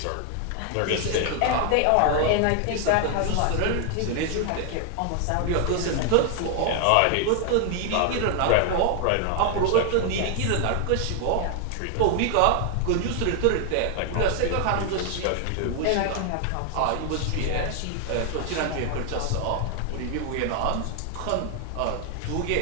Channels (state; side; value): different; both; correlation 0.00